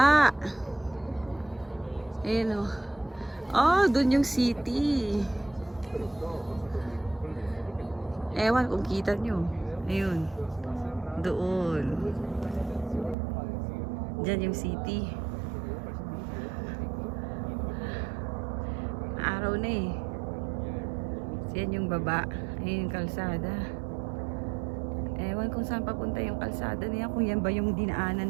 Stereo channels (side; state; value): left; drops out; at 13.2 s